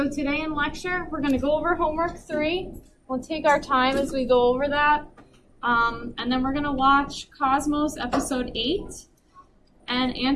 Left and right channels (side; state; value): both; identical; correlation 1.00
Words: today in lecture, we're going to go over homework 3. We'll take our time as we go over that. And then we're going to watch Cosmos episode 8 and